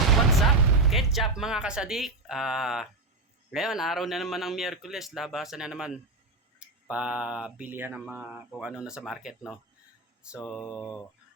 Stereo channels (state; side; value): quieter; left; 3.0 dB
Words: up? Ketchup mga kasadik. Ngayon, araw na naman ng Miyerkules. Labasan na naman. Pabilihan ng mga kung ano na sa market, no? So,